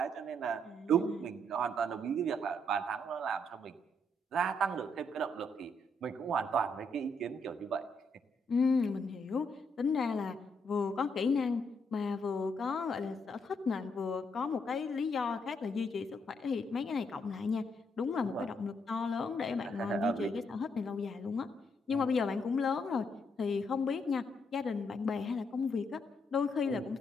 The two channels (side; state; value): both; normal; correlation 0.75